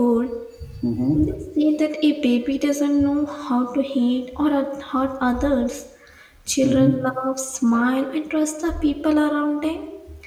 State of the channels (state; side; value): identical; both; correlation 1.00